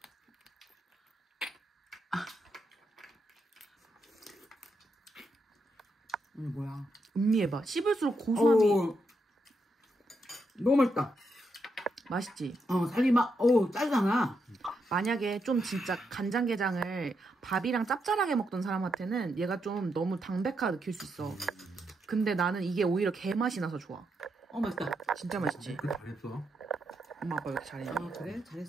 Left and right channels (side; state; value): both; normal; correlation 0.81